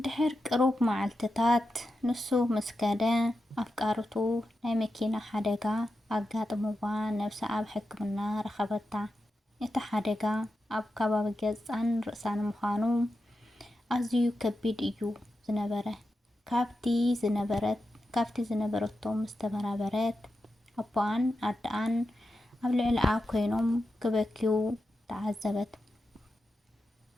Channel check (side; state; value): both; normal; correlation 0.89